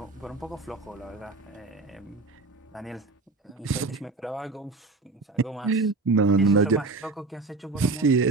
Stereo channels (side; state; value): left; quieter; 3.5 dB